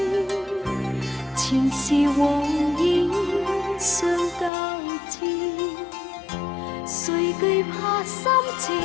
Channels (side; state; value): right; drops out; at 4.5 s